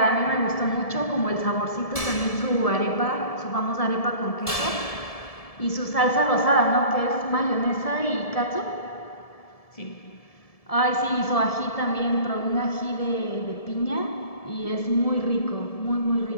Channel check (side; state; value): right; late; 1.7 ms